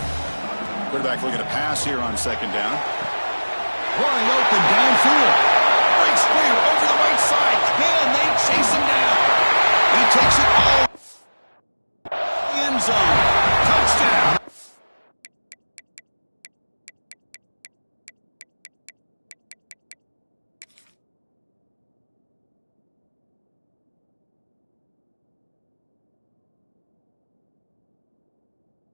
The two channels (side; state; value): both; inverted; correlation -1.00